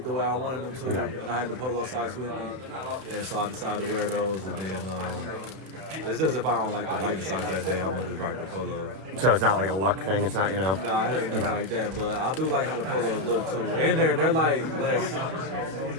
the way I wanted them to, and I had the polo socks with me, and so I decided to wear those. And then it's just if I don't like the Nike socks that day, I'm gonna just rock the polo. So it's not like a luck thing. It's not, Nah, it ain't nothing like that. But I do like how the polos look too, and they're like less.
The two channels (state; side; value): late; left; 31 ms